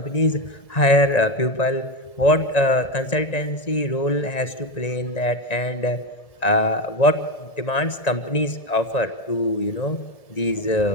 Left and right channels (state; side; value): late; right; 1.9 ms